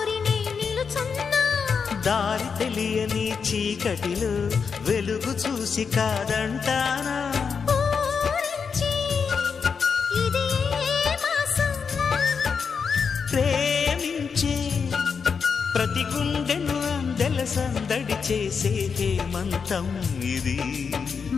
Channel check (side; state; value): right; quieter; 5.9 dB